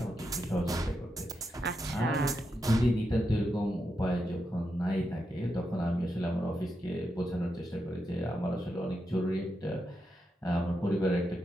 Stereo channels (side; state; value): both; normal; correlation 0.85